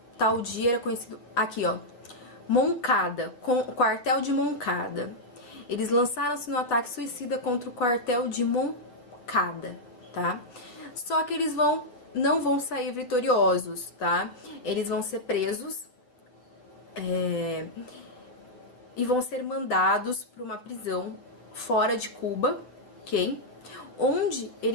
tal dia era conhecido, aqui ó, Moncada, quartel de Moncada. Eles lançaram-se no ataque suicida contra o quartel de Moncada, tá? Só que eles não vão sair vitoriosos, tá? Eles vão ser presos e vão ser mandados para uma prisão fora de Cuba, ok? Onde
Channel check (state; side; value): late; right; 8.3 ms